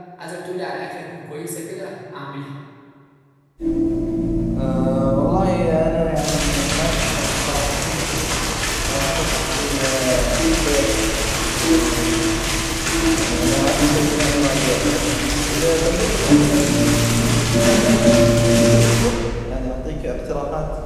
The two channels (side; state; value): both; identical; correlation 1.00